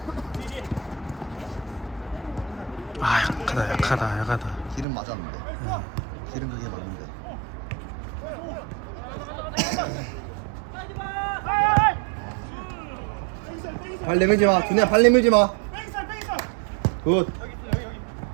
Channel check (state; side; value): drops out; left; at 4.9 s